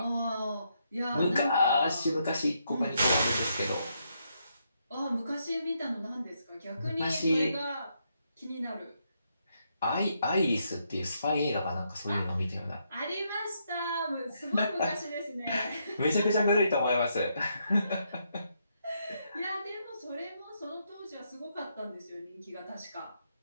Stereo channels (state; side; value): inverted; both; correlation -0.78